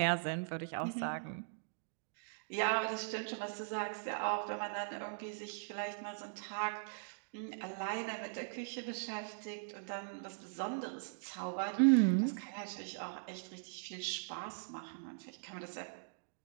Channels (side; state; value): left; silent; digital silence